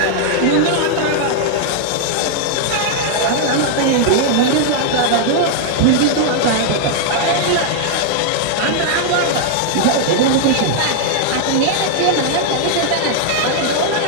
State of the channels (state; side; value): different; both; correlation 0.00